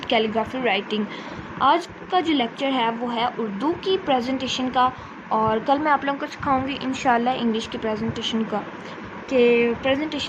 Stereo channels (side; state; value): both; identical; correlation 1.00